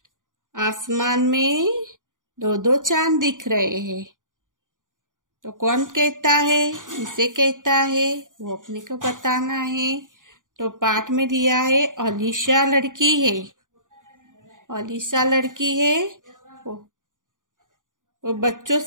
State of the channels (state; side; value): late; left; 0.88 ms